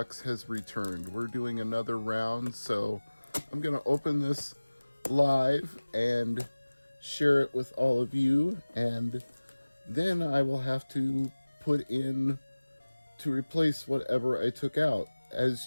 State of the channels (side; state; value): both; inverted; correlation -1.00